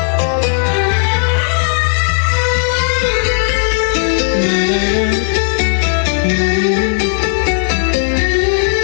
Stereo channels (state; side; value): silent; right; 60 dB below the other